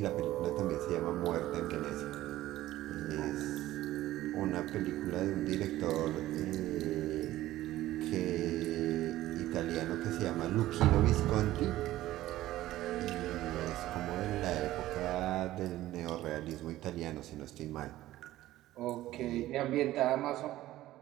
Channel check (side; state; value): left; quieter; 15.3 dB